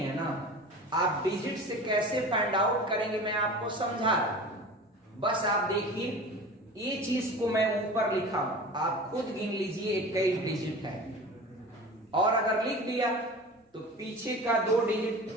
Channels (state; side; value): normal; both; correlation 0.36